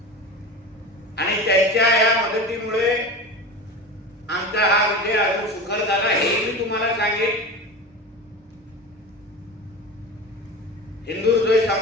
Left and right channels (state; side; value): normal; both; correlation 0.29